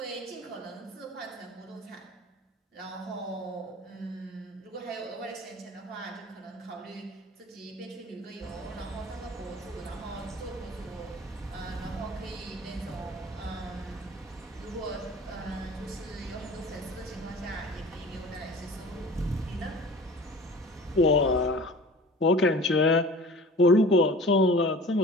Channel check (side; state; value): both; normal; correlation 0.43